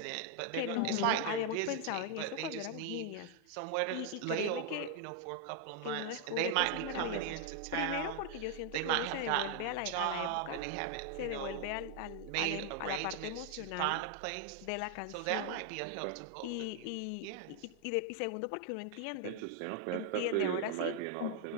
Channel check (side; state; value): both; different; correlation 0.00